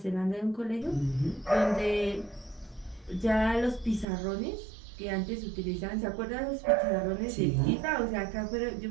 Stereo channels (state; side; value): drops out; left; at 4.0 s